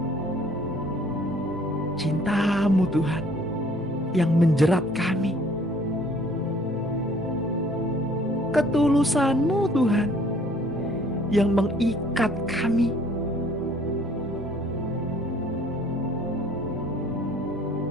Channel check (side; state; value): both; normal; correlation 0.58